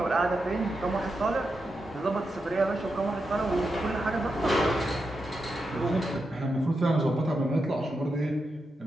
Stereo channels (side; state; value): both; normal; correlation 0.87